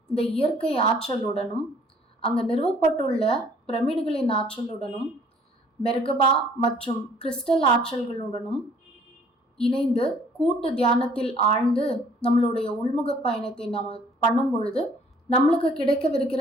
இந்த இயற்கை ஆற்றலுடனும் அங்கே நிறுவப்பட்டுள்ள பிரமிடுகளின் ஆற்றலுடனும் மெர்கபா மற்றும் கிறிஸ்டல் ஆற்றல்களுடனும் இணைந்து கூட்டு தியானத்தில் ஆழ்ந்து நம்மளுடைய உள்முக பயணத்தை நாம் பண்ணும் பொழுது நம்மளுக்கு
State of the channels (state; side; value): normal; both; correlation 0.58